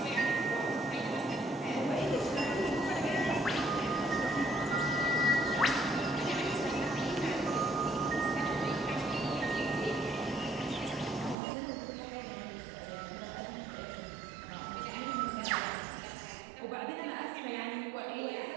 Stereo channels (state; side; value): drops out; left; at 11.4 s